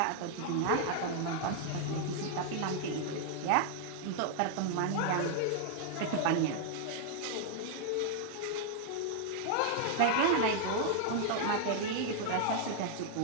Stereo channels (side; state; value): both; different; correlation 0.00